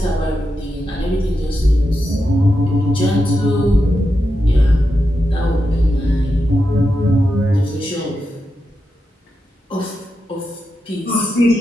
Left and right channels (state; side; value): normal; both; correlation 0.87